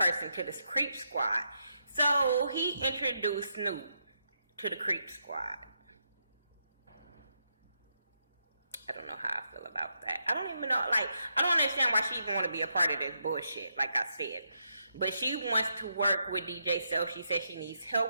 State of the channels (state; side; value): inverted; both; correlation -0.81